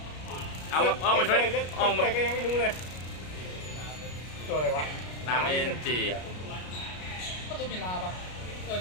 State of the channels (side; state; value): right; late; 33 ms